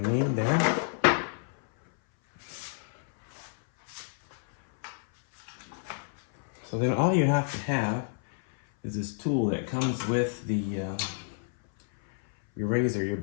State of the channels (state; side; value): silent; right; 58 dB below the other